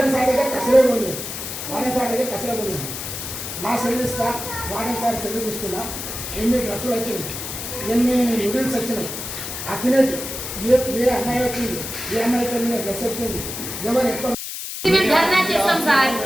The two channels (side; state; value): left; noise; hiss, 7 dB below the sound